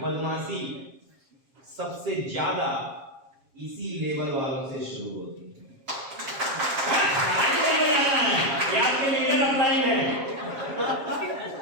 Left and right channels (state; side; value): late; left; 7.5 ms